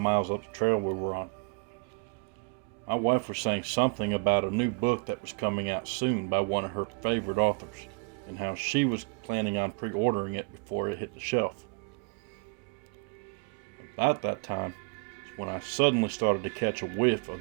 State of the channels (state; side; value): quieter; left; 36.3 dB